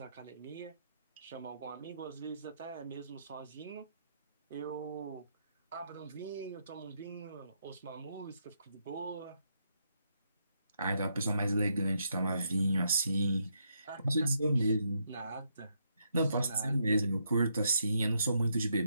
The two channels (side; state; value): both; inverted; correlation -0.78